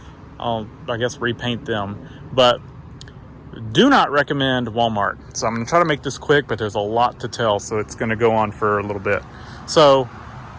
I guess repaint them. But do not recommend Walmart. So I'm going to try to make this quick, but there's a lot to tell, so it's going to go on for a little bit. So,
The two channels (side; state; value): both; identical; correlation 1.00